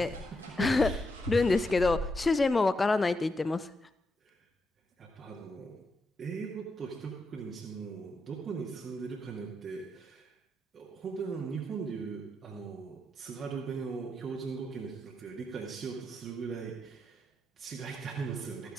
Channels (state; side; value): normal; both; correlation 0.83